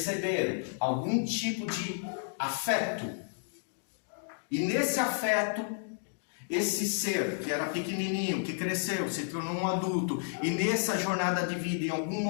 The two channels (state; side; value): silent; right; digital silence